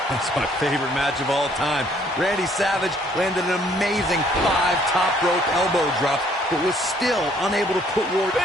That's my favorite match of all time. Randy Savage landed an amazing 5 top rope elbow drops, but was still unable to put Ward.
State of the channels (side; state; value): both; normal; correlation 0.63